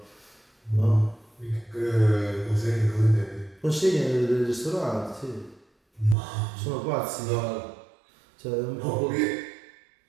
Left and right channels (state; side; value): drops out; left; at 6.2 s